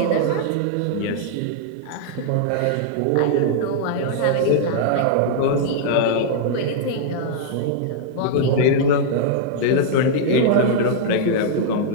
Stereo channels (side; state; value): both; different; correlation -0.01